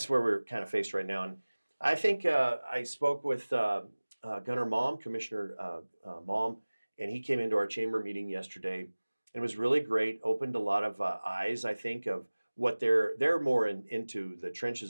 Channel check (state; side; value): inverted; both; correlation -1.00